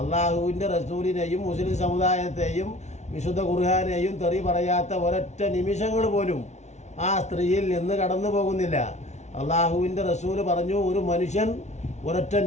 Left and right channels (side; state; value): right; late; 0.32 ms